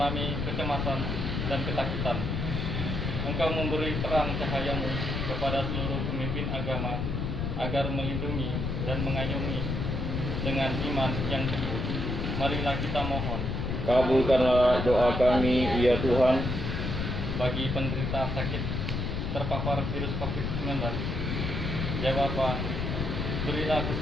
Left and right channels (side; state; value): left; noise; rumble, 2 dB below the sound